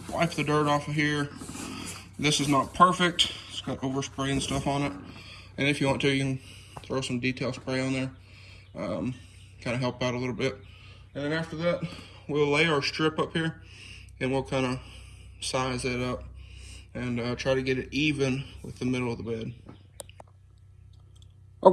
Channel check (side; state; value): both; identical; correlation 1.00